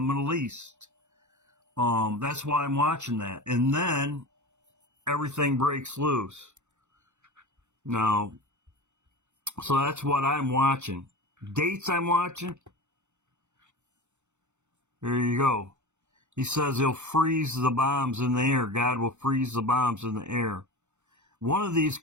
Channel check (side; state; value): left; late; 0.83 ms